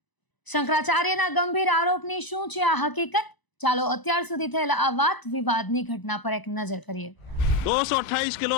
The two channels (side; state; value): right; late; 1.0 ms